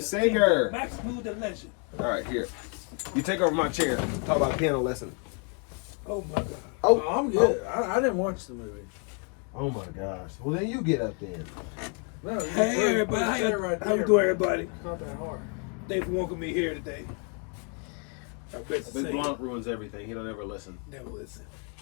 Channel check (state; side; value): quieter; right; 38.1 dB